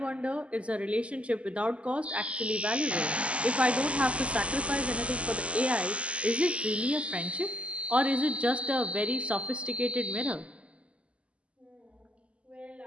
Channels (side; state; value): left; late; 0.059 ms